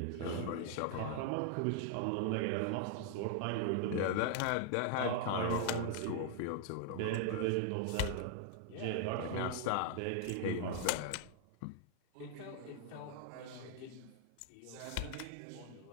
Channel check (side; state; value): both; different; correlation 0.00